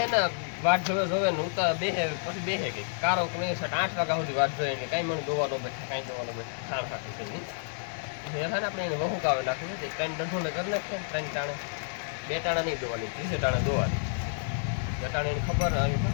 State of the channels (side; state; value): right; silent; digital silence